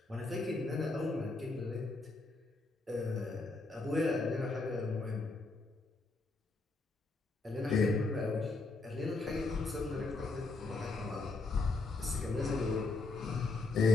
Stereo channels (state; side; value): quieter; right; 3.5 dB